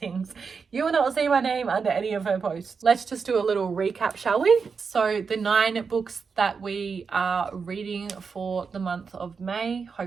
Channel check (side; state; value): left; quieter; 5.5 dB